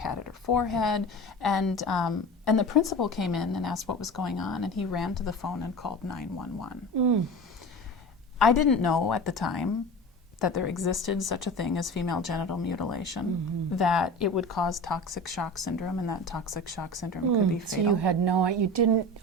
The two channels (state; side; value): normal; both; correlation 0.32